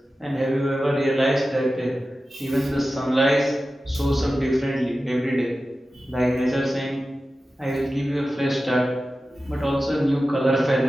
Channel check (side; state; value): both; normal; correlation 0.94